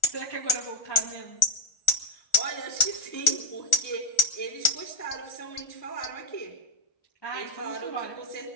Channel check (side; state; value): right; late; 1.4 ms